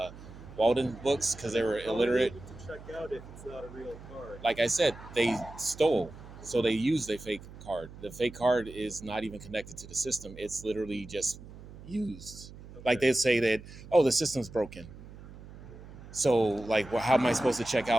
Walden Books because they were illiterate. How are you able to check out if it's not a real card? Like I said, they stole, so they used a fake card. The fake card is not even connected to the system. It's literally just used. Okay. Like they say that, oh, the system's broken. So, like, well, how am I supposed to check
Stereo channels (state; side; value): noise; right; hum, 16 dB below the sound